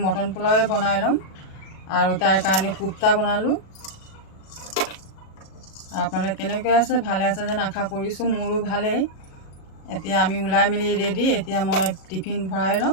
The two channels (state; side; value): late; right; 37 ms